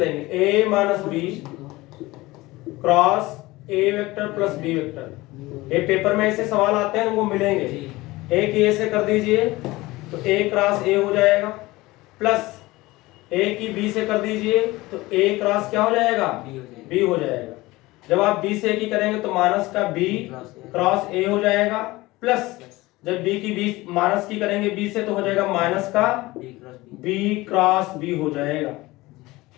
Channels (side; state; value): right; quieter; 20.0 dB